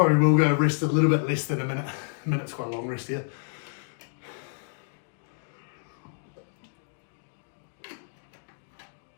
will go rest a little bit less than a minute. A minute's quite a long rest here.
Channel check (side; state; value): right; silent; digital silence